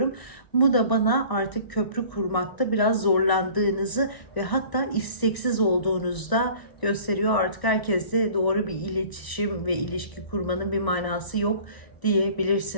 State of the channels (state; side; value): late; right; 1.0 ms